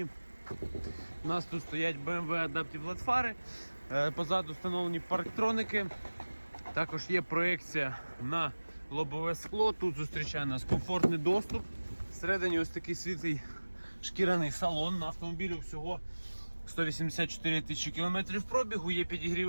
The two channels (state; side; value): inverted; both; correlation -1.00